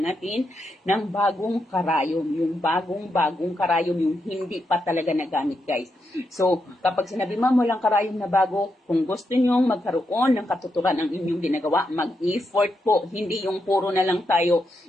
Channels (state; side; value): normal; both; correlation 0.83